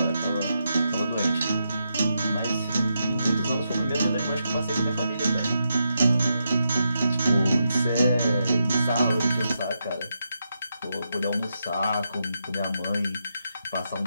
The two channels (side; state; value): both; inverted; correlation -0.84